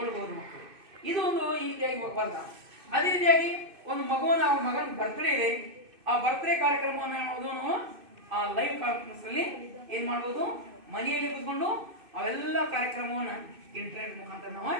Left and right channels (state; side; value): late; left; 2.6 ms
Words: ಮಕ್ಕಳು. ಇದು ಒಂದು ಈ ರೀತಿಯಾಗಿ ವರದಾನ. ಅದೇ ರೀತಿಯಾಗಿ ಒಂದು ಮಗುವನ್ನ, ಅವ್ರ ಮಗನ ಬರ್ತ್ಡೇ ಇದೆ, ಆ ಬರ್ತ್ಡೇ ಕಾರ್ಯಕ್ರಮವನ್ನು ಆ ಲೈವ್ ಕಾನ್ಫರೆನ್ಸ್ ಅಲ್ಲಿ ಏನ್ ಮಾಡಬಹುದು, ಮನೆಯಲ್ಲಿ ಕೂತ್ಕೊಂಡು ಅವೆಲ್ಲ ಕಾರ್ಯಕ್ರಮವನ್ನ ಇಂಟರ್ನೆಟ್ ಮುಖಾಂತರ ನಾವು